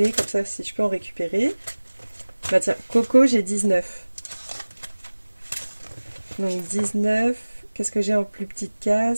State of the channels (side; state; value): both; inverted; correlation -1.00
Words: comme ça si je peux en récupérer. Bah tiens, Coco, j'ai 19. Donc 19. Qu'est-ce que j'ai en plus petite